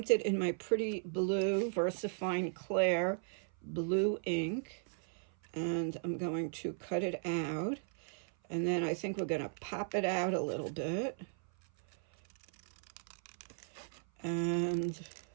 it in my pretty blue VersaFine Clair blue ink, and I'm going to cut it out. And then I think we're going to pop it out a little bit. And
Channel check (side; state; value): left; silent; 54 dB below the other